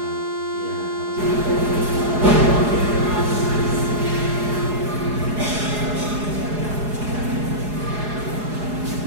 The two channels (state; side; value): late; left; 4.8 ms